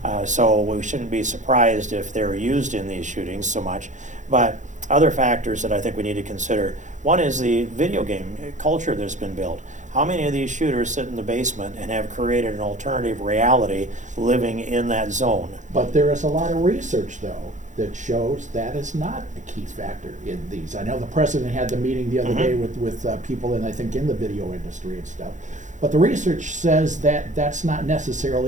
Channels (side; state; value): left; late; 0.36 ms